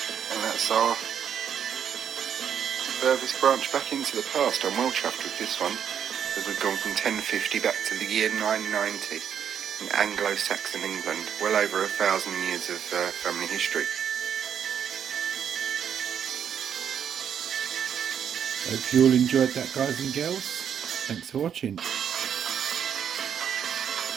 And that's our furthest branch back into the past. I'm well chuffed with this one, because we've gone from 1050 back to the year 990 in Anglo-Saxon England. Well over 1,000 years of family history. Hope you all enjoyed that, guys and girls. Thanks for watching.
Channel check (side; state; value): left; quieter; 8.4 dB